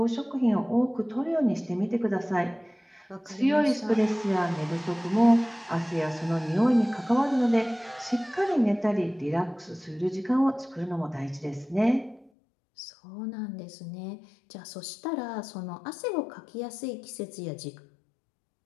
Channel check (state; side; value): drops out; right; at 12.3 s